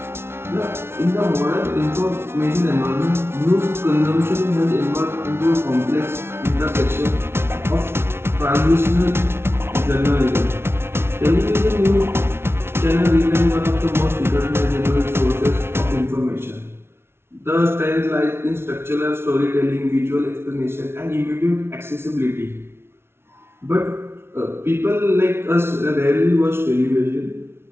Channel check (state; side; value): late; left; 0.12 ms